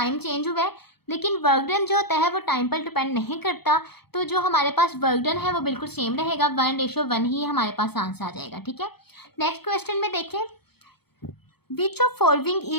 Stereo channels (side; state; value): right; late; 0.97 ms